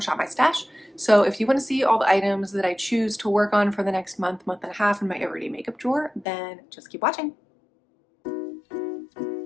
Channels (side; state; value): right; drops out; at 6.2 s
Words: My Stash. So if you want to see all the items that I choose to work on for the next month, month and a half in my everyday makeup drawer, then just keep watching.